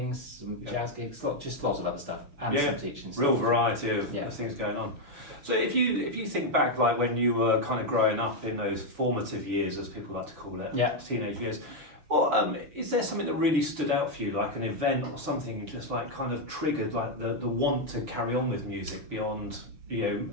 some jazz gigs, just lots of other stuff, and some teaching stuff. Real variety of things going on. So if you think back, like when you were kind of growing up in those formative years, as people like to call it, teenage years, well, is there something that really stood out for you, like an event or something just like kind of triggered like the want to carry on with music beyond,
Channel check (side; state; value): left; late; 6.9 ms